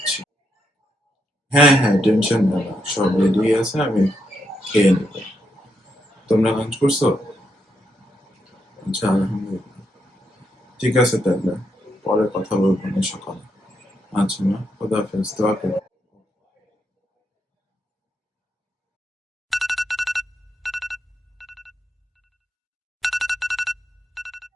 হ্যাঁ, হ্যাঁ, টেনশন নেই না। সব রেডি আছে, আমি খেয়ে নেব। তোমরা লাঞ্চ করছো? আচ্ছা, আলহামদুলিল্লাহ। ঠিক আছে তাহলে। পরে কথা বলবো না সকালে। আচ্ছা মা, খোদা হাফেজ। দোয়া করো।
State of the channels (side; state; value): both; normal; correlation 0.80